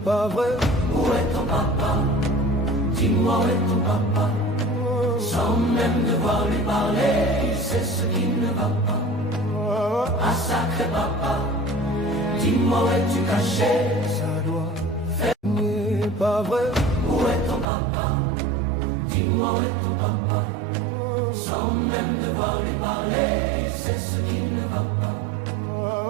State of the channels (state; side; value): drops out; left; at 17.7 s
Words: pas vrai. Où est ton papa? Dis-moi où est ton papa? Sans même devoir lui parler, il sait ce qui ne va pas. Ah sacré papa, dis-moi où es-tu caché? Ça doit faire. N'est pas vrai. Où est ton papa? Dis-moi où est ton papa? Sans même devoir lui parler, il sait ce qui ne va pas.